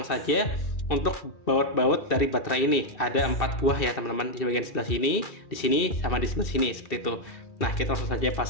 saja untuk baut-baut dari baterai ini. Ada 4 buah ya, teman-teman, di bagian sebelah sini, di sini, sama di sebelah sini seperti itu. Nah, kita langsung saja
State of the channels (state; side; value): late; right; 2.6 ms